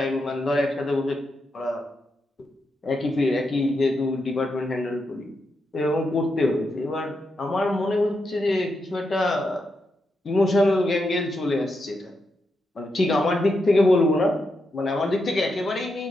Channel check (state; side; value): normal; both; correlation 0.84